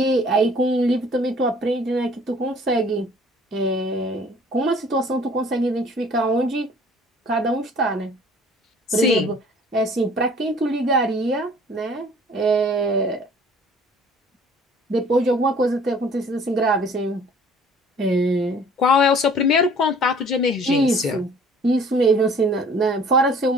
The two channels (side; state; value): both; normal; correlation 0.52